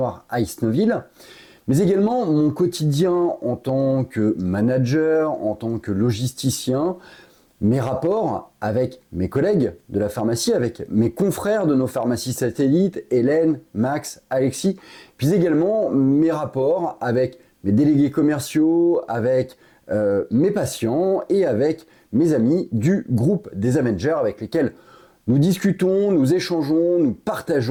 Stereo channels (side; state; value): both; identical; correlation 1.00